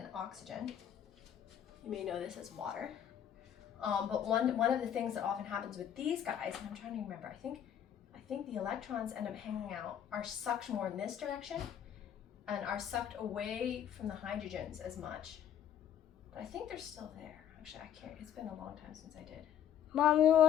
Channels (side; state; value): right; quieter; 9.8 dB